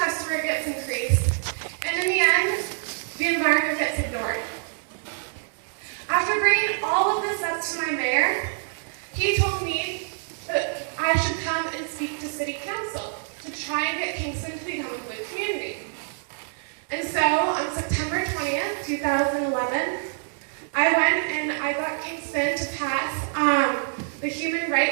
gets increased, and in the end, the environment gets ignored. After bringing all of this up to my mayor, he told me that I should come and speak to City Council to try and get Kingston to become a blue community. And so, on September 20th, 2011, I went and I got Kingston to pass the Human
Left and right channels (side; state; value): left; silent; digital silence